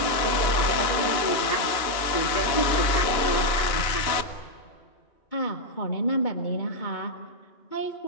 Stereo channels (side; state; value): right; late; 2.9 ms